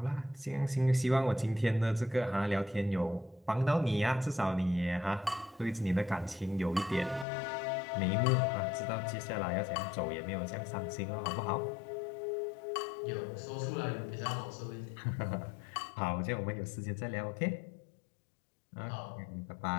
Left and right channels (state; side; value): drops out; right; at 7.2 s